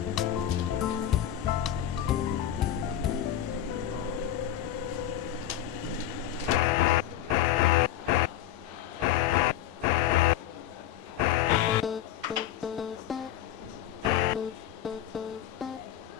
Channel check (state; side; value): quieter; right; 11.6 dB